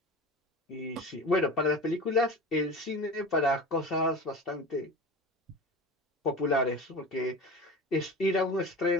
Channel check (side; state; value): both; normal; correlation 0.33